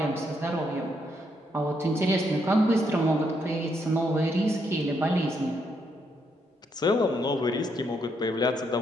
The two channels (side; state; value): both; normal; correlation 0.76